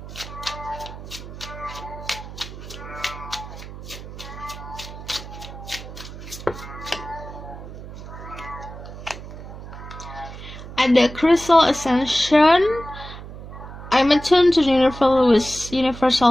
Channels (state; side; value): noise; right; hum, 13 dB below the sound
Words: Ada Crystal Ascension. I'm attuned to the